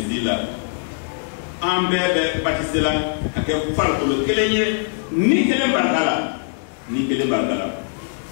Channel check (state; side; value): silent; right; digital silence